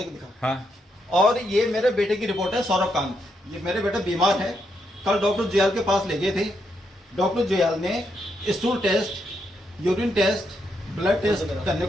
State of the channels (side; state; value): both; normal; correlation 0.80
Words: दिखा। हाँ। और ये मेरे बेटे की रिपोर्ट है, सौरभ कांत। ये मेरे बेटा बीमार है, कल डॉक्टर जयाल के पास ले गए थे। डॉक्टर जयाल ने stool test, urine test, blood test करने